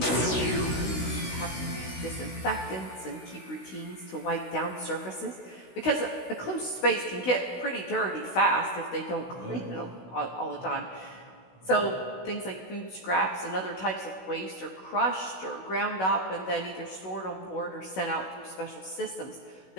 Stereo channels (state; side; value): late; right; 16 ms